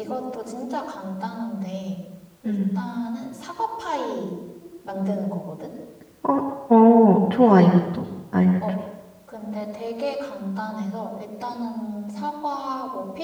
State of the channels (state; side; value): identical; both; correlation 1.00